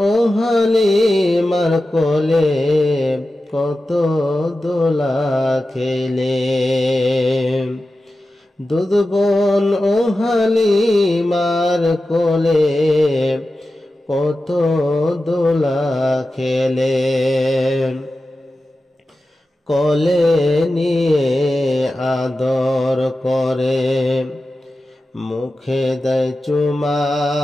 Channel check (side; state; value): both; normal; correlation 0.93